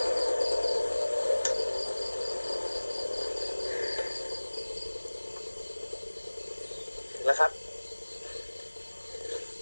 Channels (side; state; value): both; inverted; correlation -1.00